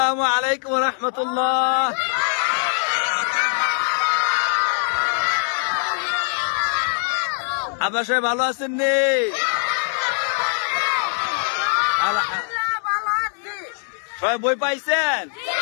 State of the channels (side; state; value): right; silent; digital silence